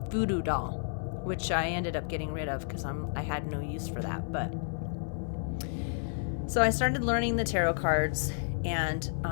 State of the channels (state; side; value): silent; right; 57 dB below the other